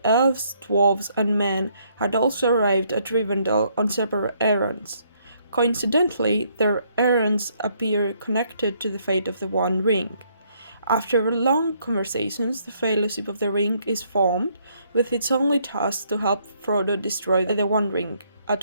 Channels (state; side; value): inverted; both; correlation -0.69